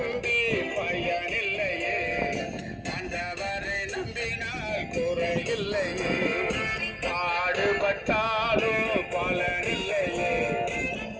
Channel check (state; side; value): identical; both; correlation 1.00